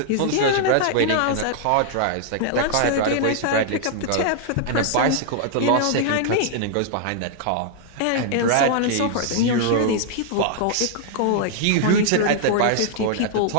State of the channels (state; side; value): different; both; correlation 0.00